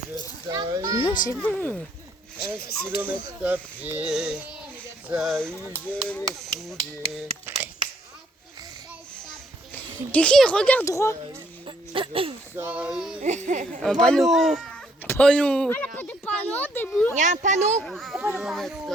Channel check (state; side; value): normal; both; correlation 0.68